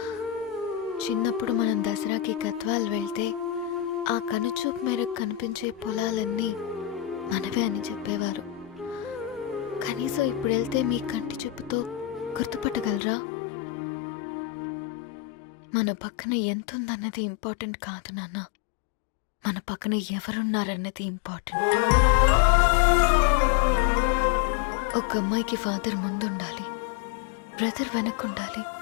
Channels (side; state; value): right; drops out; at 13.0 s